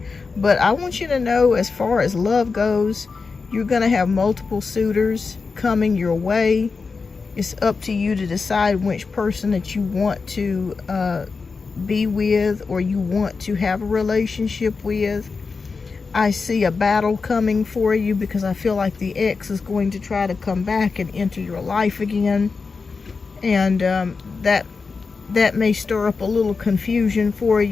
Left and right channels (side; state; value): right; quieter; 4.6 dB